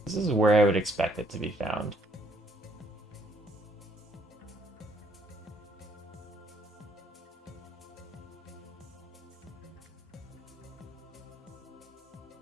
This is where I would expect it to be found.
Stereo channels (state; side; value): normal; both; correlation 0.67